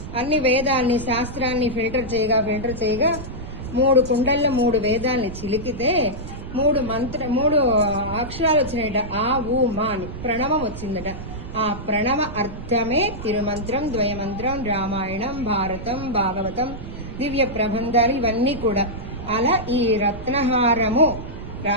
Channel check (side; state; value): right; noise; rumble, 10 dB below the sound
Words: అన్ని వేదాన్ని, శాస్త్రాన్ని ఫిల్టర్ చేయగా 3 కుండల్లో 3 వేదాల్ని చిలికితే 3 అక్షరాలు వచ్చినాయట. ఆ ఊ మా అని ప్రణవం వచ్చిందట. ఆ ప్రణవ అర్థమే తిరుమంత్రం, ద్వయమంత్రం, రామాయణం, భారతం, భాగవతం, దివ్య ప్రబంధాలు ఇవన్నీ కూడా. అలా ఈ రత్నహారము